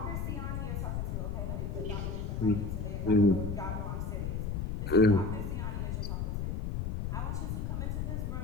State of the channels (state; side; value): noise; left; rumble, 2 dB below the sound